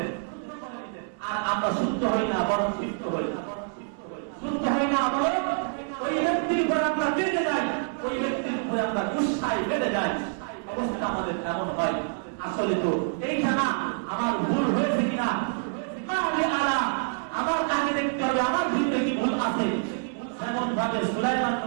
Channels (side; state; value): left; silent; 60 dB below the other